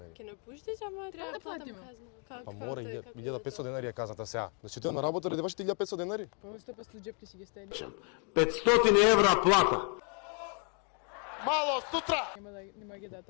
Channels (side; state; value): right; quieter; 39.4 dB